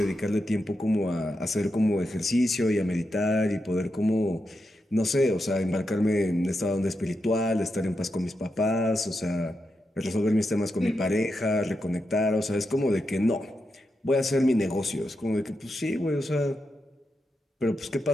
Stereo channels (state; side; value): normal; both; correlation 0.86